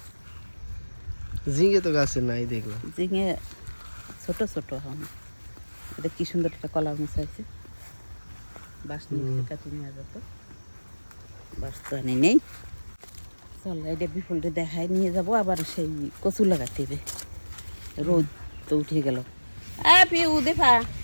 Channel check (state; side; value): inverted; both; correlation -1.00